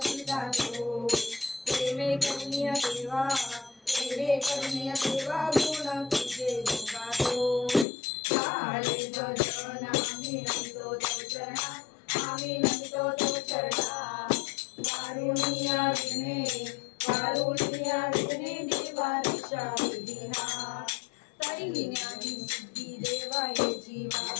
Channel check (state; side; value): drops out; right; at 7.9 s